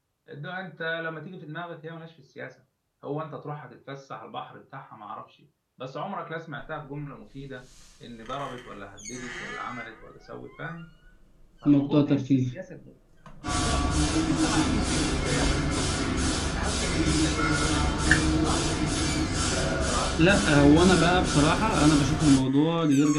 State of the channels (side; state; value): both; identical; correlation 1.00